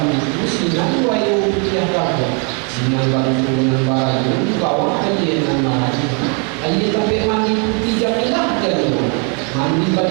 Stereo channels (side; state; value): left; quieter; 37.2 dB